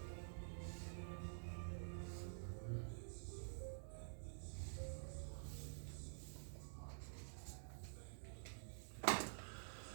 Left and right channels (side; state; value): left; silent; digital silence